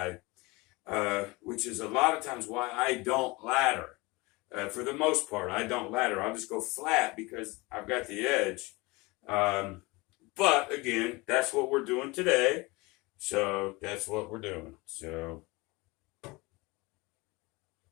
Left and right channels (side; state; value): right; quieter; 24.0 dB